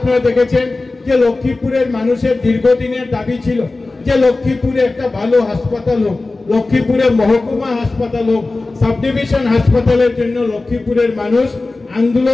দেখেছেন যে লক্ষ্মীপুরের মানুষের দীর্ঘদিনের দাবি ছিল যে লক্ষ্মীপুরে একটা ভালো হাসপাতাল হোক, লক্ষ্মীপুরে মহকুমা হাসপাতাল হোক, সাব ডিভিশন হাসপাতালের জন্য লক্ষ্মীপুরের মানুষ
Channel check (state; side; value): quieter; right; 3.3 dB